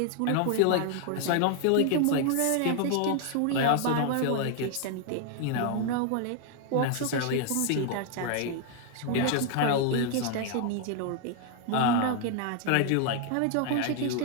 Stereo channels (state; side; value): different; both; correlation 0.00